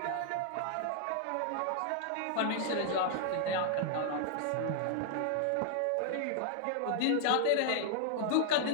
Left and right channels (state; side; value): different; both; correlation 0.00